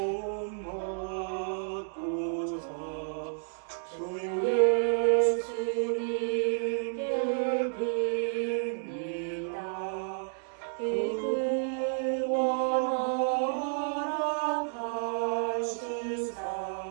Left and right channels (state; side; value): silent; left; digital silence